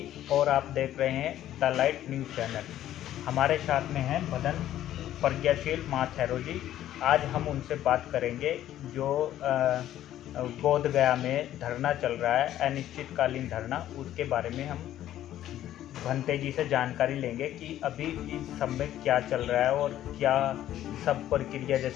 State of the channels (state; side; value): quieter; right; 12.5 dB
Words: और आप देख रहे हैं द लाइट न्यूज़ चैनल। हमारे साथ में हैं मदन प्रज्ञाशील महाथैरो जी। आज हम उनसे बात करेंगे जो बोध गया में धरना चल रहा है, अनिश्चितकालीन धरना, उसके बारे में हम भंते जी से जानकारी लेंगे कि अभी इस समय क्या चल रहा है और क्या सब प्रक्रिया,